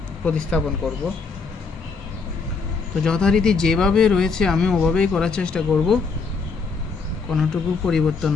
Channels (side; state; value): right; quieter; 4.7 dB